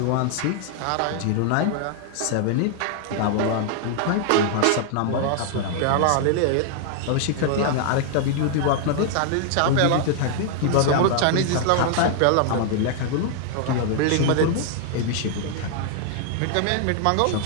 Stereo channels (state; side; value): different; both; correlation 0.00